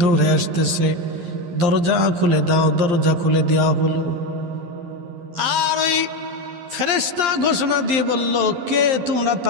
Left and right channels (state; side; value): late; left; 11 ms